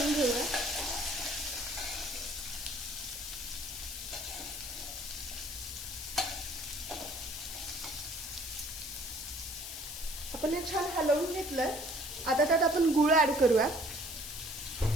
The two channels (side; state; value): left; noise; hiss, 8 dB below the sound